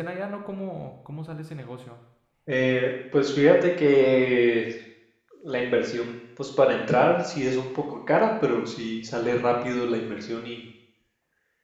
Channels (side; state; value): both; identical; correlation 1.00